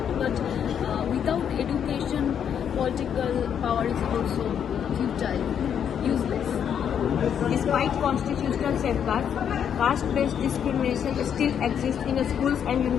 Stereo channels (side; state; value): right; quieter; 8.4 dB